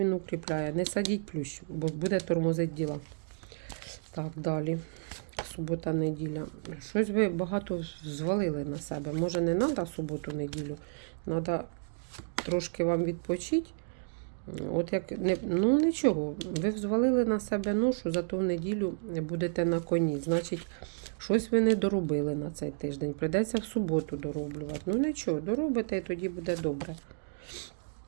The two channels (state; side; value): silent; left; digital silence